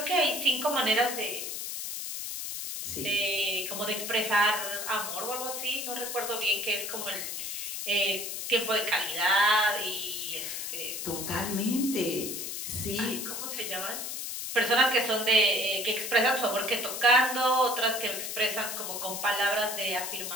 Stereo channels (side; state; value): left; noise; hiss, 5 dB below the sound